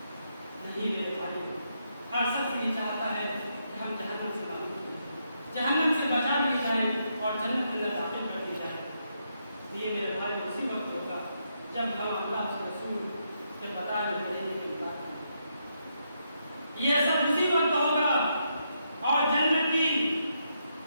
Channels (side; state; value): both; inverted; correlation -0.80